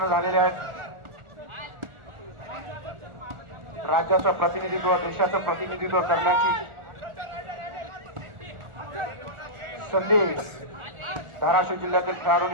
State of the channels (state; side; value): late; left; 1.4 ms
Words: झालेले आहेत. राज्याचं प्रतिनिधित्व, देशाचं प्रतिनिधित्व करण्याची संधी धाराशिव जिल्ह्यातील